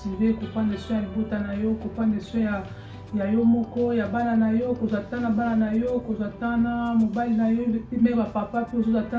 ko prendre soin ya bota na yo ko prendre soin ya yo moko ya bana na yo kozatana bana na yo kozatana mobile na yo me ba papa pe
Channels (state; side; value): identical; both; correlation 1.00